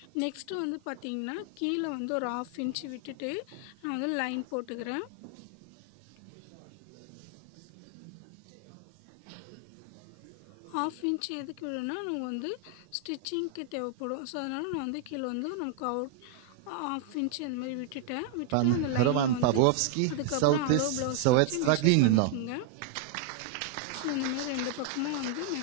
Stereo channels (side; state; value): both; different; correlation 0.00